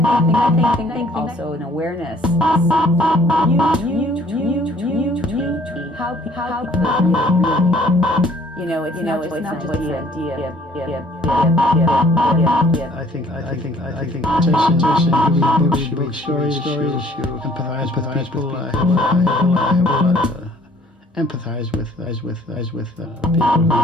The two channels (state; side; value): normal; both; correlation 0.58